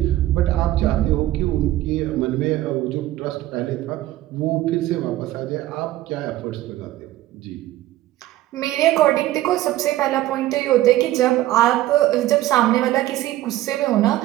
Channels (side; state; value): left; quieter; 15.3 dB